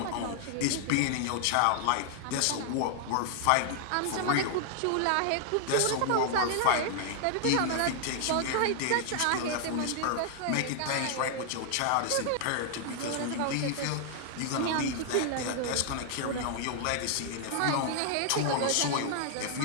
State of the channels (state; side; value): different; both; correlation 0.00